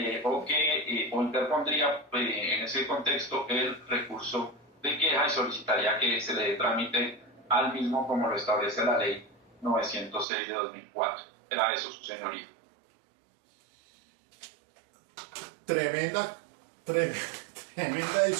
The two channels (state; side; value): drops out; left; at 10.2 s